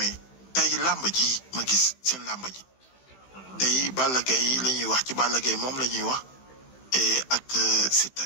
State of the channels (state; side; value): late; right; 15 ms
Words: tey làmb ji ma gis seen làmb ji tey Balla Gaye la ñuy wax ci Balla Gaye moom la ñuy wax ak Siteu